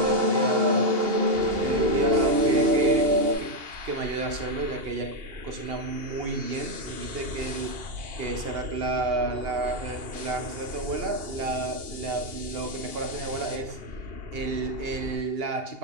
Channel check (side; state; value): left; late; 2.8 ms